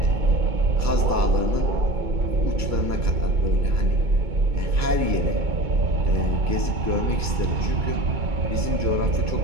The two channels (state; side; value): late; left; 2.2 ms